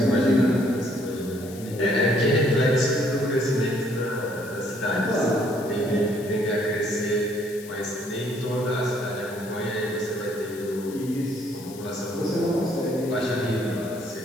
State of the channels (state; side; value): noise; left; hiss, 18 dB below the sound